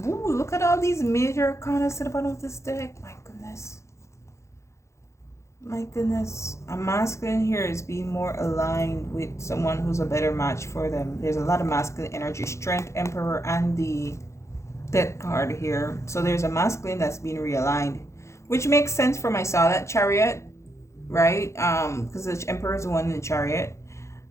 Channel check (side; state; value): right; late; 0.14 ms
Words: Ooh, look at all these major arcanas to the bottom of this deck. My goodness. My goodness. A masculine here is being more aligned with someone who's a better match for them. There's a lot of masculine energy. Strength, Emperor, and the Death card here. So there's a masculine that's being realigned, which makes sense for my Natal Chariot, right? Because the Emperor is the one in the Chariot.